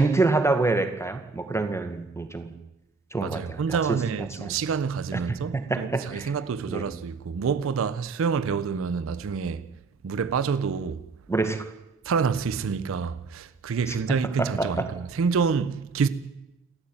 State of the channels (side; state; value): left; quieter; 4.4 dB